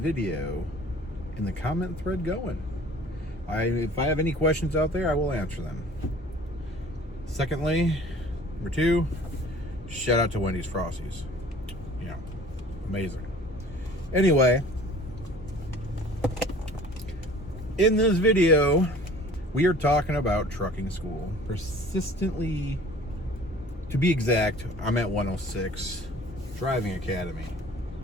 in the comment thread going. If I have any questions out there, I will answer them. Secondly, number two, shout out to Wendy's Frosties. You know, amazing. Anyway, in this video, we are talking about trucking school. Persistently, to be exact, I'm at 106 Driving Academy.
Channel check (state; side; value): normal; both; correlation 0.48